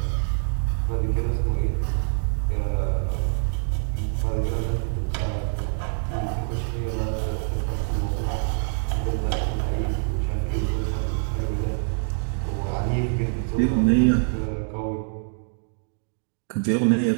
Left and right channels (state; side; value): silent; left; 62 dB below the other